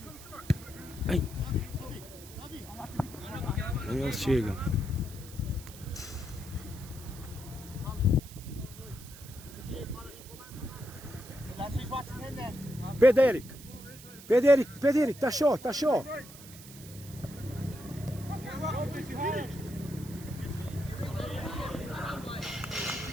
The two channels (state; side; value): noise; right; hiss, 17 dB below the sound